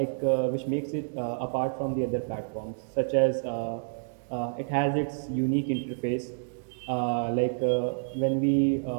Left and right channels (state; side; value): silent; left; digital silence